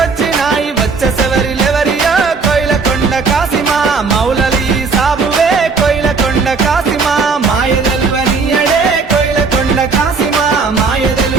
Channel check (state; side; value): quieter; left; 4.7 dB